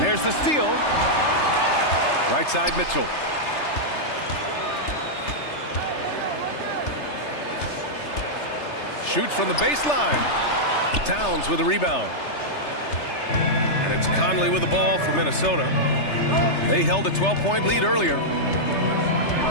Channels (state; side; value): late; right; 3.3 ms